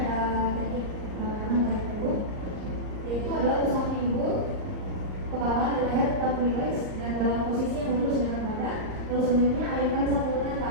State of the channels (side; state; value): left; late; 38 ms